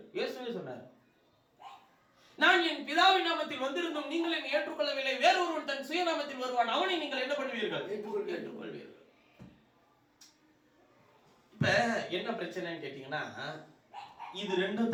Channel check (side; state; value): both; identical; correlation 1.00